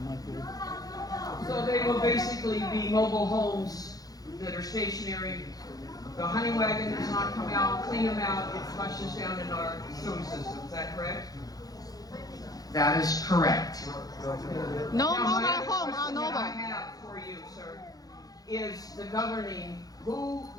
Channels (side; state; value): right; late; 0.18 ms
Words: So they will basically be mobile homes that are stationary. The hunting wagon does not come out, clean them out, it flushes down in our sewer system. Is that correct? That is correct. No Now, mobile my other home question are that I mobile. have for you, sir, is the governing. Who